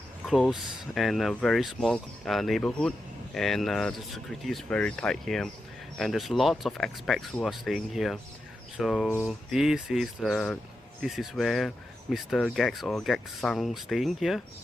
close and a very small neighborhood, and the security is very tight here, and there's lots of expats who are staying here. So this is where Mr. GACKT or GACKT-san staying here.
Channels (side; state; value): both; normal; correlation 0.88